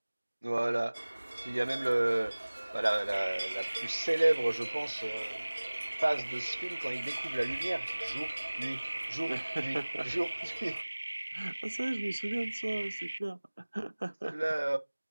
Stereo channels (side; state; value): both; inverted; correlation -1.00